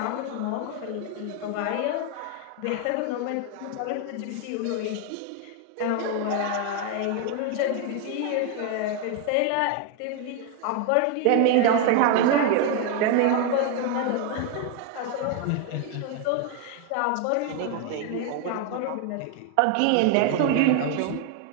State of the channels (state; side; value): different; both; correlation 0.01